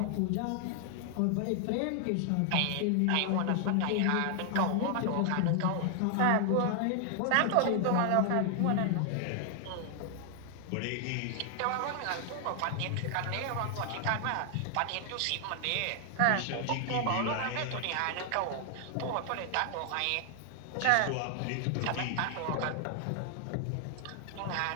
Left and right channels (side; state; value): both; different; correlation 0.00